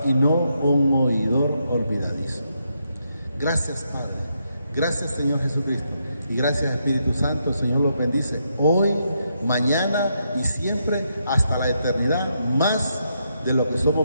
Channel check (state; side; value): inverted; both; correlation -0.80